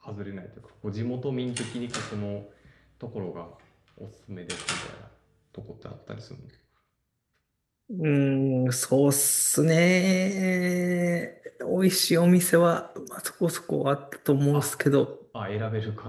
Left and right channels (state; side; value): identical; both; correlation 1.00